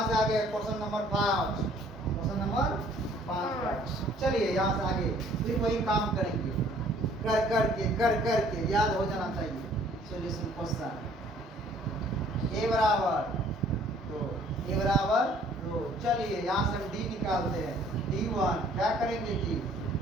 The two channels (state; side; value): normal; both; correlation 0.58